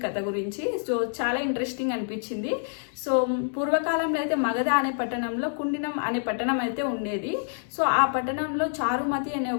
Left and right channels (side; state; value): right; silent; digital silence